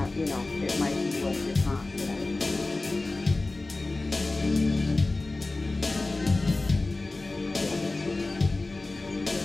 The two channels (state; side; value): quieter; right; 3.2 dB